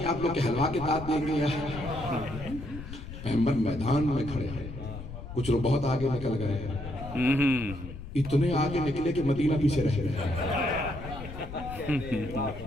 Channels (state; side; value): noise; left; rumble, 11 dB below the sound